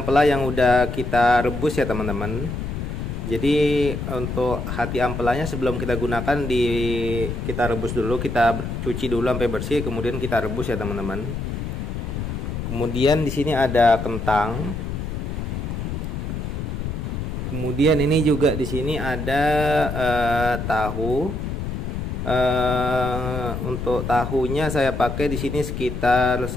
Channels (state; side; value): noise; left; rumble, 4 dB below the sound